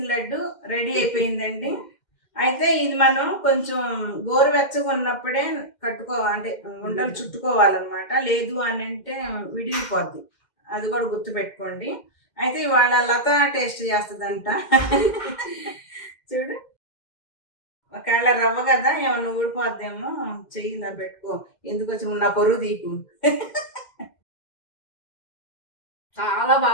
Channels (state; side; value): late; right; 2.1 ms